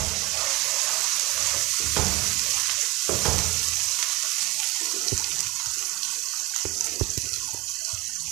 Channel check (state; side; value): quieter; left; 22.5 dB